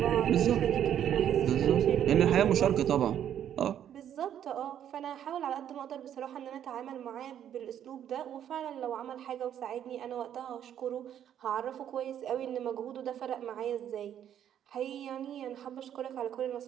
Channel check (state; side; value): quieter; left; 10.0 dB